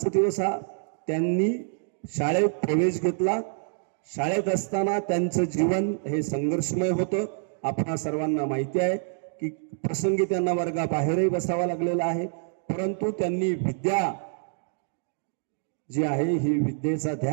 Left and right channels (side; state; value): left; silent; digital silence